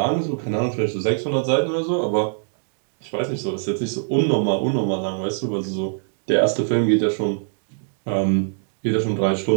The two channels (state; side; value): silent; left; digital silence